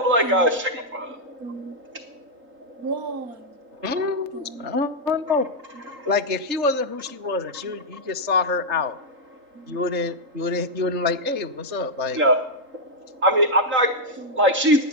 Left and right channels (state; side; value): late; left; 3.4 ms